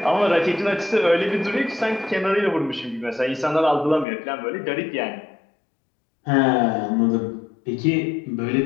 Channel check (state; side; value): drops out; right; at 4.0 s